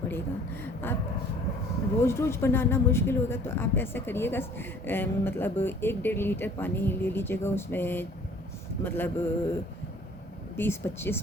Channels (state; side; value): normal; both; correlation 0.53